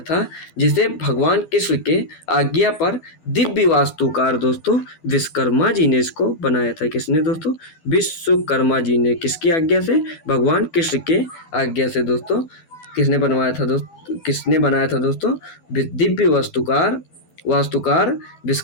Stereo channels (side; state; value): right; late; 12 ms